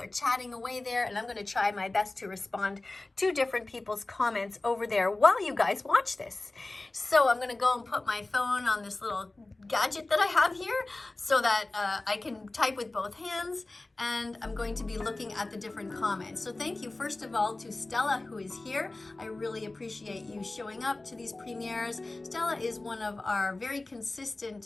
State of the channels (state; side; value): quieter; right; 3.0 dB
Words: chatting away there, and I'm going to try my best to respond to different people's comments over there while you guys watch this. So I'm going to go and put my phone on this little gadget that I have here so that I can type with both hands, and I'm going to be looking at the different comments. So thank you first of all to Stella, who is here. I really appreciate you showing up to these premieres. Stella is one of our very